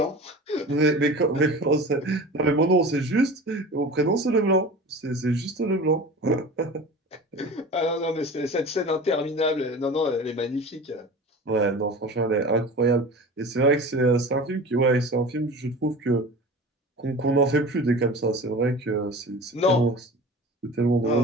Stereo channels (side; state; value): both; normal; correlation 0.36